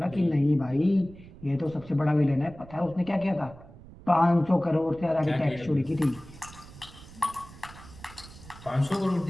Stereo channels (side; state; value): right; noise; rumble, 19 dB below the sound